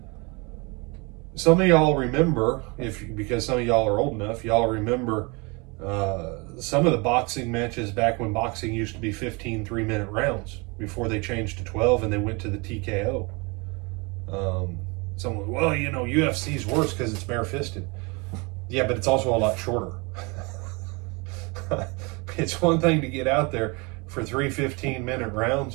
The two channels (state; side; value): quieter; left; 28.7 dB